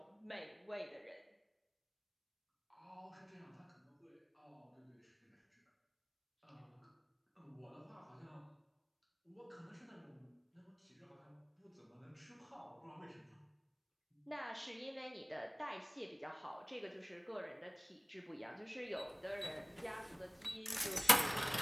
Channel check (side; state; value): both; identical; correlation 1.00